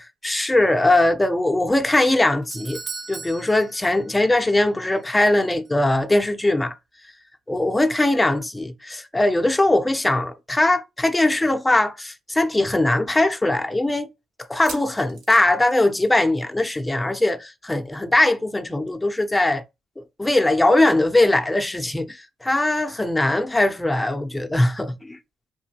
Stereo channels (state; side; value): normal; both; correlation 0.97